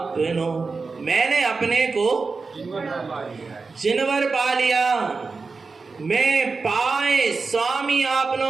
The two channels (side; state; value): left; quieter; 4.3 dB